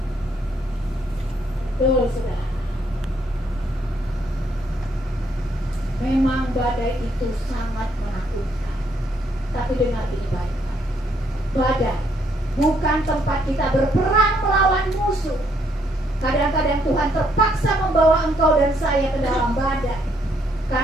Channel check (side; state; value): both; normal; correlation 0.71